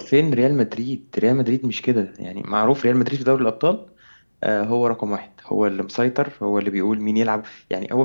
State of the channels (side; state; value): both; inverted; correlation -1.00